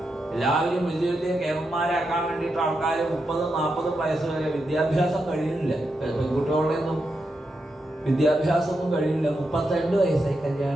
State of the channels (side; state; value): both; normal; correlation 0.86